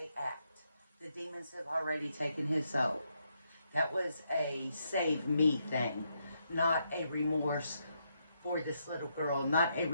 act. The demons have already taken his soul. That was a save me thing, not a remorse for this little girl, not a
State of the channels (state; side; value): inverted; both; correlation -0.79